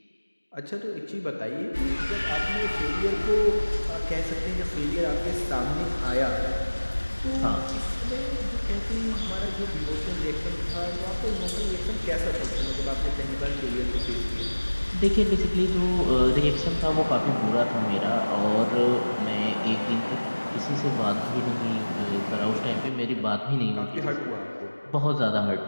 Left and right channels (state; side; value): inverted; both; correlation -1.00